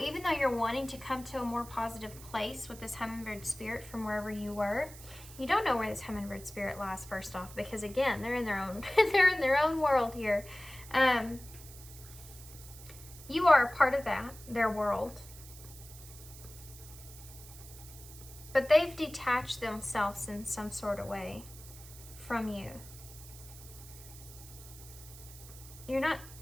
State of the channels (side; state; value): right; noise; hiss, 17 dB below the sound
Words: even though you're wanting to come to a more positive place with this hummingbird spirit from wherever you were, you don't know where this hummingbird spirit lies first off, because again, they're in their own they're in their own world here. You are a part of that, their world. But they've detached themselves in some sort of way from you. You're not,